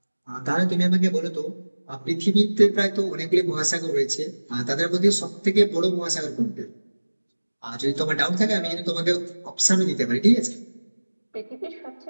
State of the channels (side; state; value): both; inverted; correlation -1.00